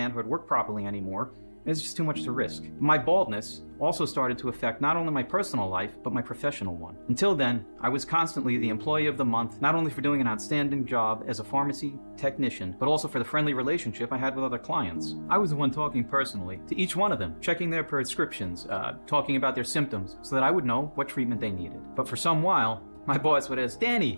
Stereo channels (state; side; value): inverted; both; correlation -1.00